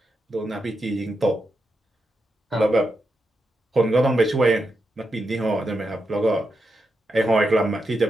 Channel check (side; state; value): both; normal; correlation 0.86